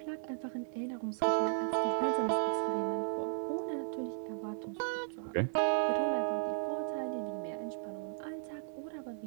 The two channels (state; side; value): silent; left; digital silence